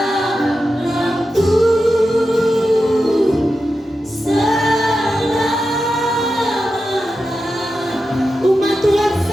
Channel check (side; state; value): both; normal; correlation 0.90